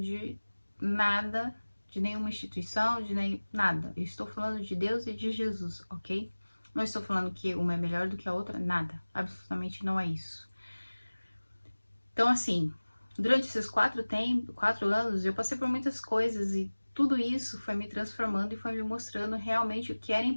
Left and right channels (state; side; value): inverted; both; correlation -1.00